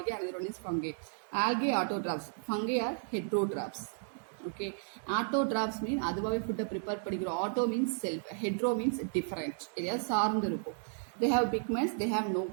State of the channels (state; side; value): silent; left; digital silence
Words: another one is fungi. Algae autotrophs, fungi are heterotrophs. Okay, autotrophs mean அதுவாகவே ஃபுட்டை ப்ரிப்பேர் பண்ணிக்கிறோம். Auto means self, hetero means different, எதையாவது சார்ந்து இருக்கும். They have pigments, they have no